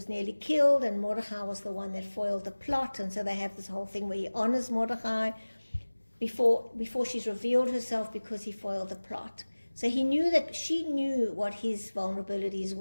nearly killed, and Mordecai was the one that foiled the plot, and so they have this whole thing where he honors Mordecai before she's revealed herself because he foiled the plot. So he knew that she knew what his vulnerabilities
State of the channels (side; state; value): both; inverted; correlation -1.00